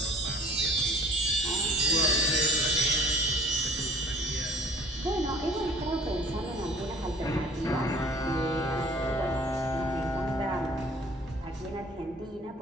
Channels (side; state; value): both; normal; correlation 0.49